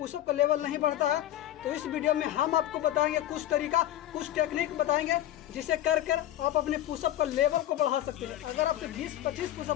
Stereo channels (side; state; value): right; quieter; 13.1 dB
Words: का लेवल नहीं बढ़ता है। तो इस वीडियो में हम आपको बताएंगे कुछ तरीका, कुछ टेक्निक बताएंगे जिसे कर आप अपने पुशअप का लेवल को बढ़ा सकते हैं। अगर आपसे 20-25